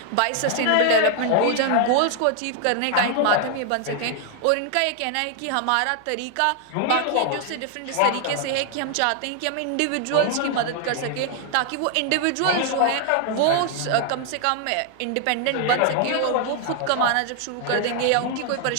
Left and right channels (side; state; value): both; different; correlation 0.00